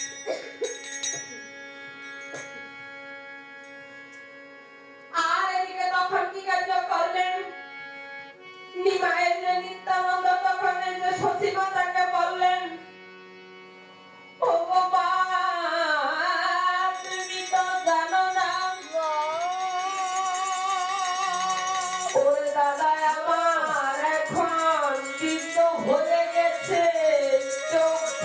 আর এদিকে তখন কি কার্য করলেন? নিমাইয়ের যে নিত্যানন্দ তখন এই যে সচিবতাকে বললেন, ও বাবা তুমি তো জানো না ওরে দাদা আমার এখন চিত্ত হয়ে গেছে,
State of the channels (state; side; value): identical; both; correlation 1.00